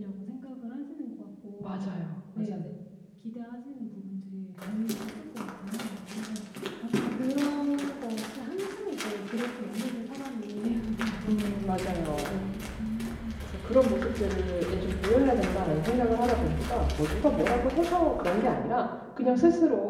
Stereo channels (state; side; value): identical; both; correlation 1.00